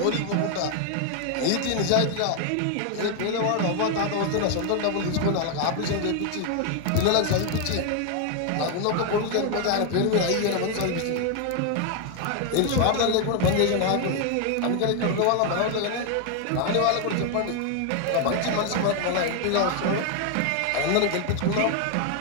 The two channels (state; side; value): different; both; correlation 0.00